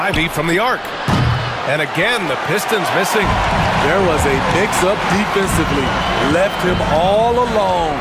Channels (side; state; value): both; identical; correlation 1.00